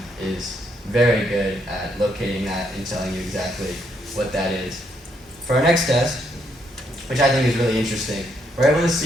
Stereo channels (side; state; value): both; normal; correlation 0.75